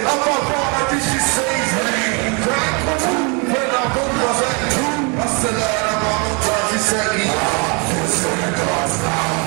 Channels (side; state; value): left; quieter; 33.5 dB